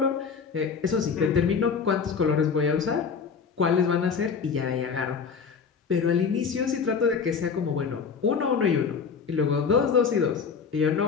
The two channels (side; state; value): right; quieter; 5.9 dB